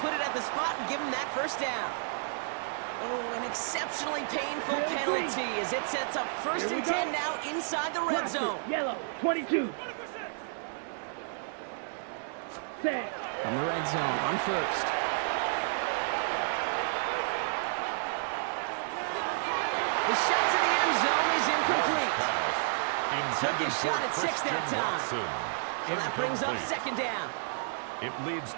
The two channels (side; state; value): left; silent; digital silence